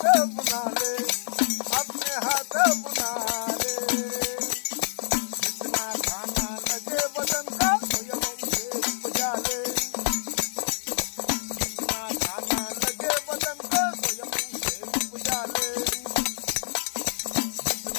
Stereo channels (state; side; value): silent; right; digital silence